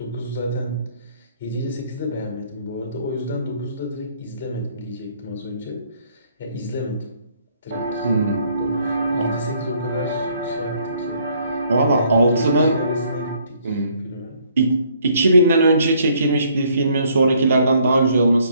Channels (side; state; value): both; inverted; correlation -0.65